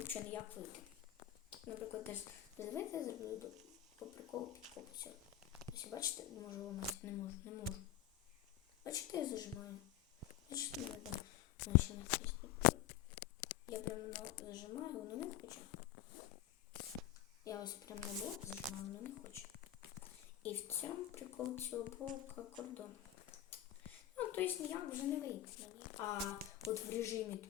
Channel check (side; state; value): right; quieter; 12.6 dB